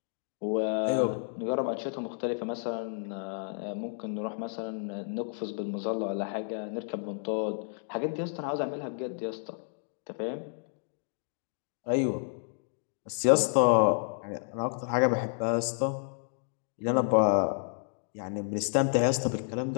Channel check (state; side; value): silent; right; digital silence